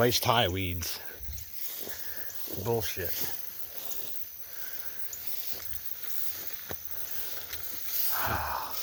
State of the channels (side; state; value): both; identical; correlation 1.00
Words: high weeds. Bullshit.